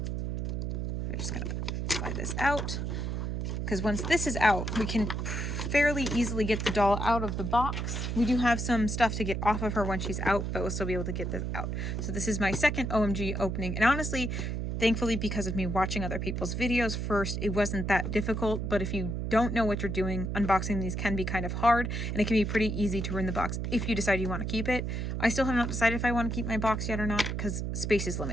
I'm just going to slide this out, because once this is out, we can fairly easily get the doll out of the box. We do have some stuff to get off of her when she's out, but we'll still be able to get this out. So this is my second OMG opening. And honestly, thankfully, because of me watching other people's videos first, it wasn't that difficult. But if you don't know what you're doing, unboxing these can be kind of hard, and it can be pretty easy to ruin the box if you decide you want to keep it. I still have not decided if I want to keep my box yet or not, because space is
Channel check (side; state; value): right; noise; hum, 2 dB below the sound